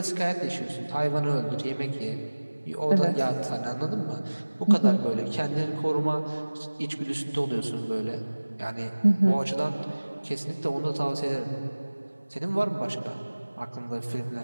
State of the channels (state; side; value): inverted; both; correlation -1.00